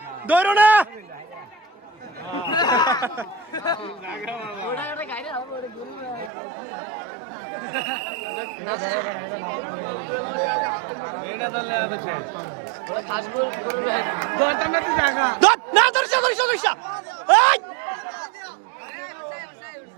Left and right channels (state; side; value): drops out; left; at 6.3 s